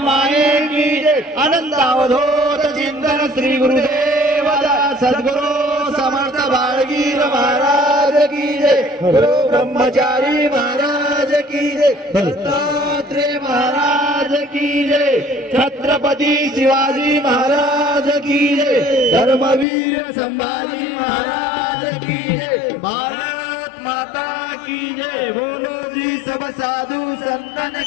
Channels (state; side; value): drops out; right; at 19.7 s